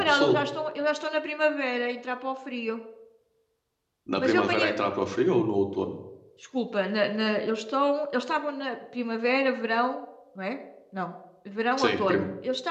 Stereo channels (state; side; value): identical; both; correlation 1.00